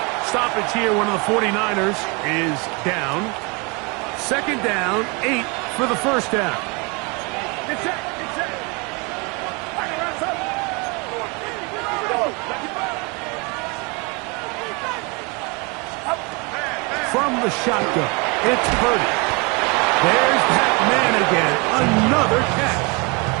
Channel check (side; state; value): left; quieter; 30.0 dB